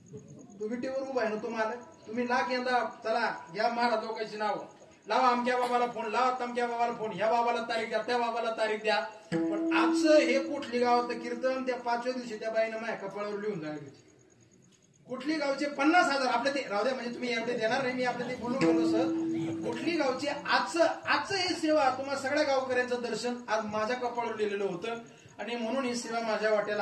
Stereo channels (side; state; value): both; identical; correlation 1.00